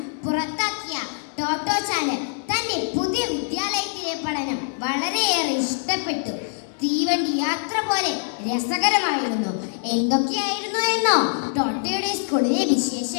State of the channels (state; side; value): silent; right; 63 dB below the other